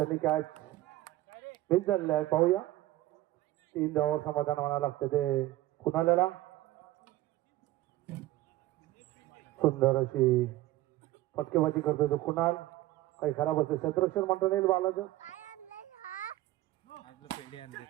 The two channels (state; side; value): quieter; left; 16.5 dB